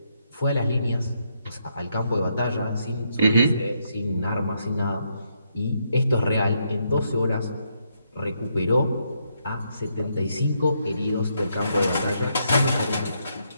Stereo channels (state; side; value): inverted; both; correlation -0.77